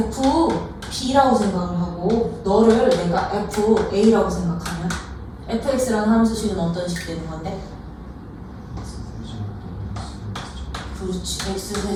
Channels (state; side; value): identical; both; correlation 1.00